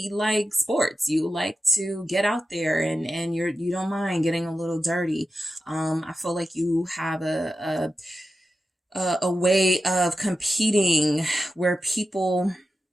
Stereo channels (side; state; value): both; normal; correlation 0.92